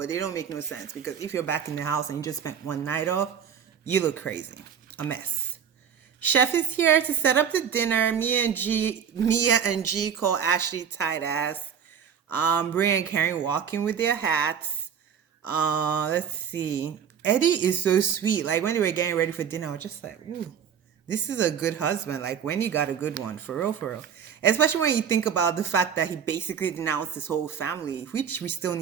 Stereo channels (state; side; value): quieter; left; 7.8 dB